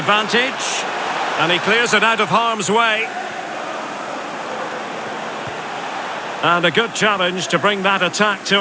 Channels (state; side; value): identical; both; correlation 1.00